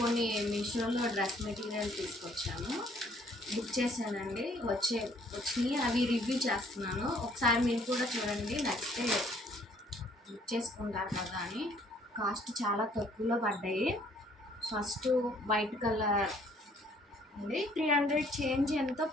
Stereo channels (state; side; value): normal; both; correlation 0.62